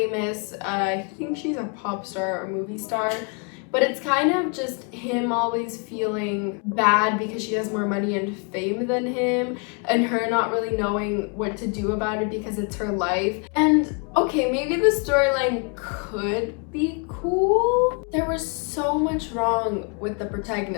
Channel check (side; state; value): right; quieter; 35.4 dB